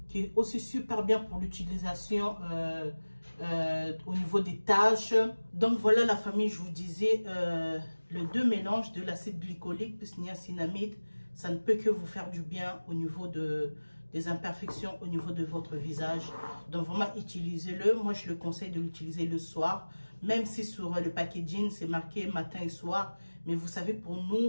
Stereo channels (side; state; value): both; inverted; correlation -1.00